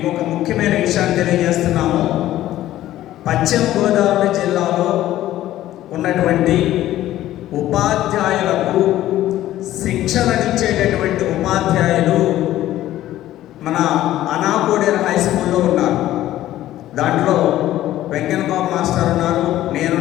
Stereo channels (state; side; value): quieter; right; 14.0 dB